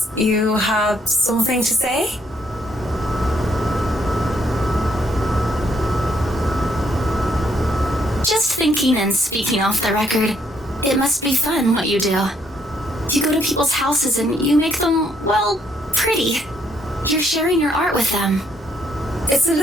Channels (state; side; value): normal; both; correlation 0.71